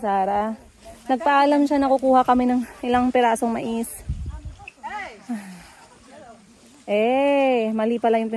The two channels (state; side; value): identical; both; correlation 1.00